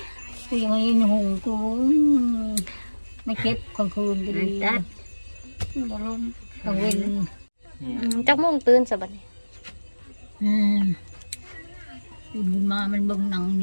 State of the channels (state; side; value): inverted; both; correlation -1.00